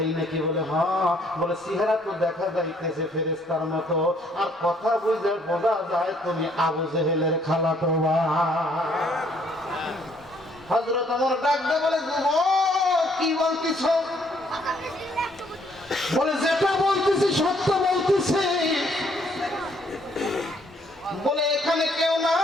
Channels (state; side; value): normal; both; correlation 0.66